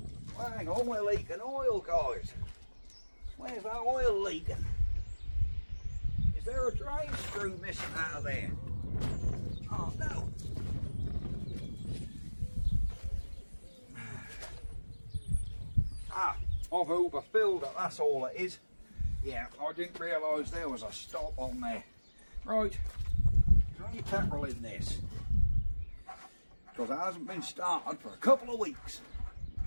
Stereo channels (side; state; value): both; inverted; correlation -1.00